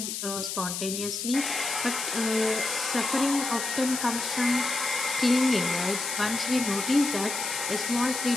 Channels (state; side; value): noise; left; hiss, 4 dB below the sound